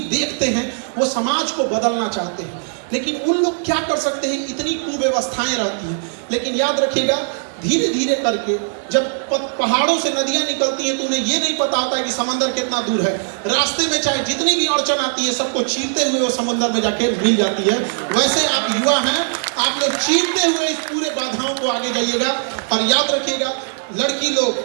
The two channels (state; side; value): silent; left; 66 dB below the other